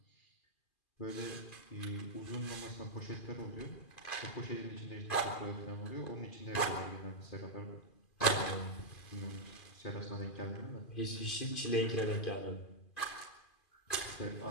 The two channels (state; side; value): late; right; 2.4 ms